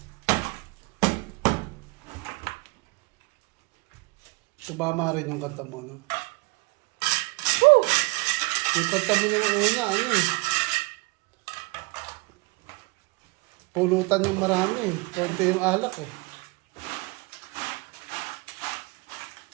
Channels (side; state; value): left; quieter; 25.6 dB